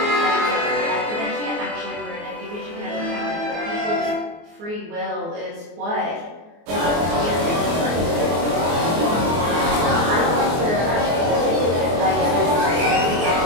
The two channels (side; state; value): left; late; 24 ms